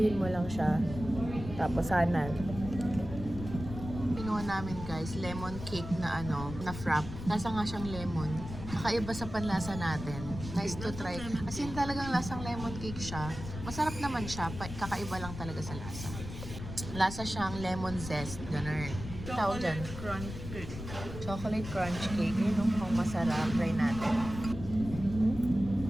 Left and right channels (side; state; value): left; noise; rumble, 9 dB below the sound